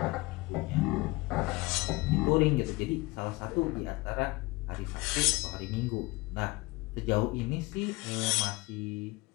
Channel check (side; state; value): right; quieter; 22.9 dB